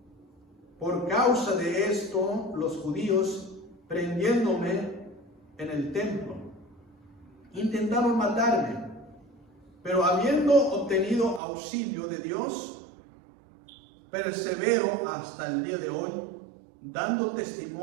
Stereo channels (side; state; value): left; drops out; at 11.4 s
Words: esto, los judíos, prendiéndome en el templo, intentaron matarme, pero habiendo obtenido auxilio de Dios, persevero hasta el día de hoy, dando